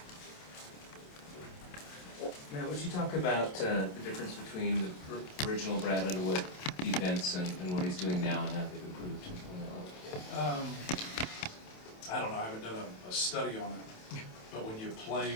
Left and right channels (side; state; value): right; late; 27 ms